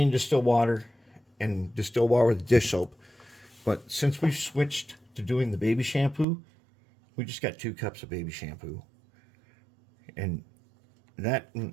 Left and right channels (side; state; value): left; drops out; at 6.2 s